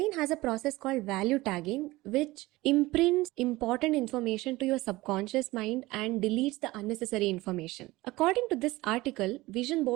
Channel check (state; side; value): quieter; left; 19.6 dB